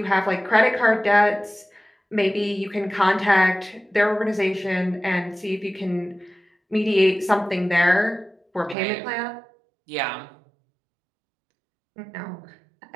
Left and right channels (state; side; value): drops out; left; at 8.8 s